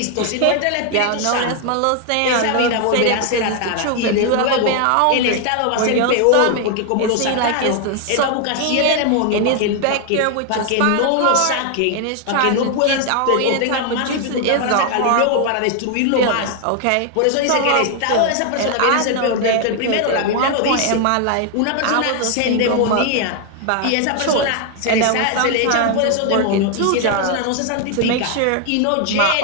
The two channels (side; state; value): both; different; correlation 0.01